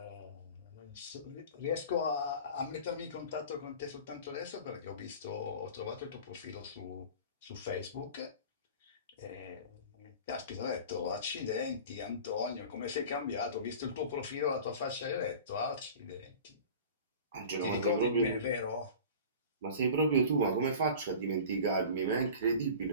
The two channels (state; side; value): inverted; both; correlation -0.39